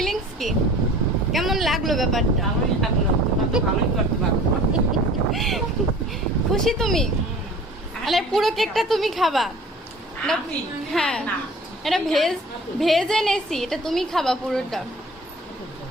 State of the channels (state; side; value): normal; both; correlation 0.45